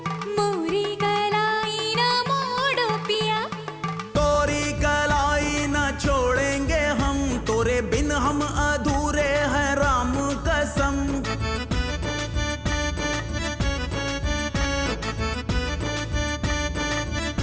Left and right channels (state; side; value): identical; both; correlation 1.00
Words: मोरी कलाई ना मोड़ो पिया। तोरी कलाई ना छोड़ेंगे हम, तोरे बिन हम अधूरे हैं राम कसम।